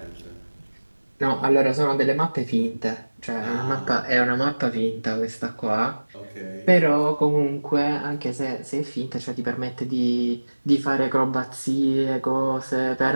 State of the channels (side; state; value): both; inverted; correlation -1.00